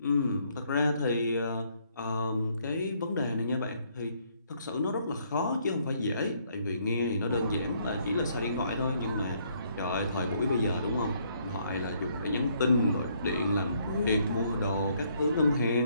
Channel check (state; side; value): inverted; both; correlation -0.69